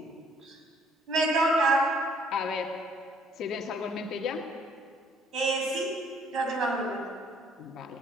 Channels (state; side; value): normal; both; correlation 0.62